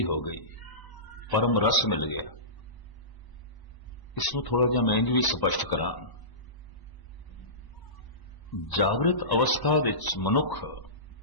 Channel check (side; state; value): right; late; 1.0 ms